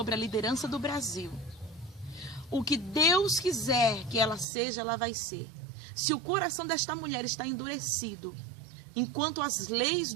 a liderança do Brasil, o que Deus quiser que ela seja, ela vai ser. Se o coração desta mulher está endurecido, enquanto as leis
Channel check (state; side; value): drops out; left; at 4.5 s